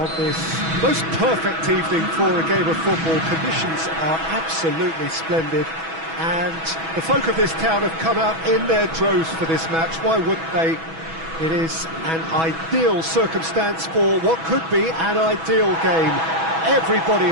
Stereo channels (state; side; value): late; left; 6.1 ms